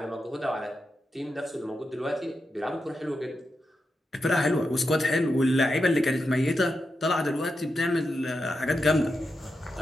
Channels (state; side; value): normal; both; correlation 0.88